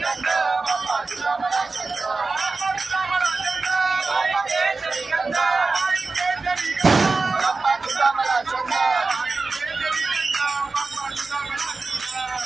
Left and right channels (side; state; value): left; quieter; 3.9 dB